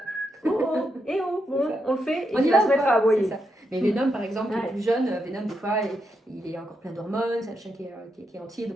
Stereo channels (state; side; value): normal; both; correlation 0.82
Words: Oh, et oh, bon, on le fait, et on il va se mettre à aboyer. Mais Venom, par exemple, qui est plus jeune, Venom, des fois, il est encore plein d'hormones, c'est un chien qui est entier, donc